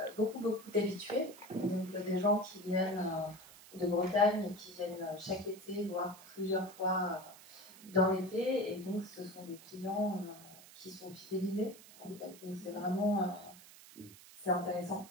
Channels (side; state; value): right; noise; hiss, 19 dB below the sound